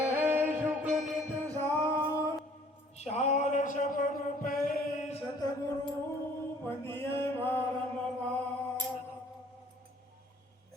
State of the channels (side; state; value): both; normal; correlation 0.56